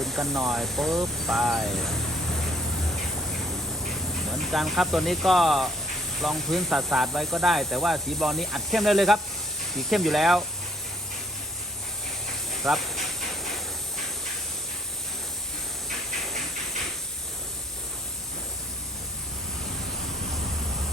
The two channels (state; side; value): normal; both; correlation 0.64